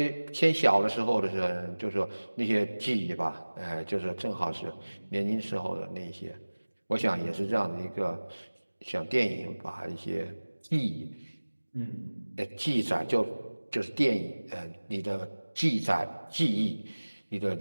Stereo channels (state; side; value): inverted; both; correlation -1.00